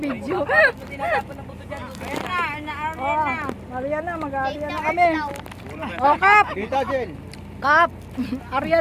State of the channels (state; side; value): identical; both; correlation 1.00